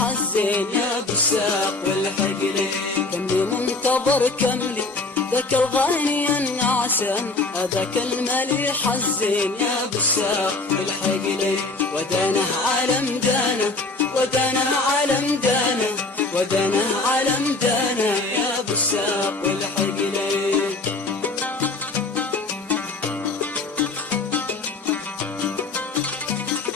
الزين يا بالساق والحقلي. كملي منتظر كملي ذاك الغاني النعسان، هذاك المليح الزين يا بالساق والحقلي. ودانا عالم دانا ودانا عالم دانا ودانا عالم دانا يا بالساق والحقلي.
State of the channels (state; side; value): quieter; right; 3.4 dB